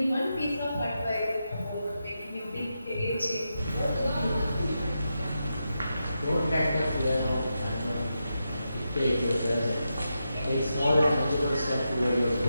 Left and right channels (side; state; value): both; inverted; correlation -0.87